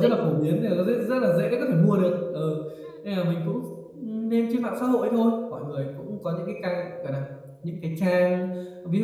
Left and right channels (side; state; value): both; identical; correlation 1.00